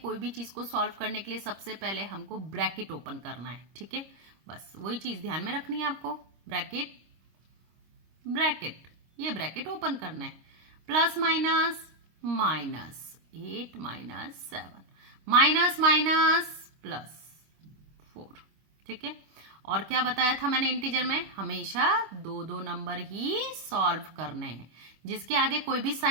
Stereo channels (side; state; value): left; late; 26 ms